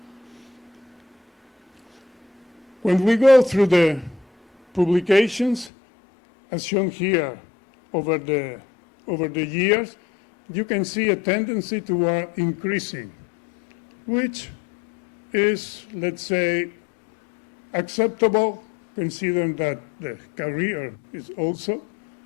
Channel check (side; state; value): right; drops out; at 5.7 s